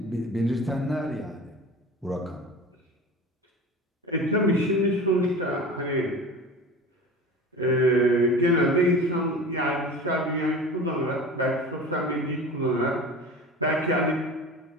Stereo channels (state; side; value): normal; both; correlation 0.35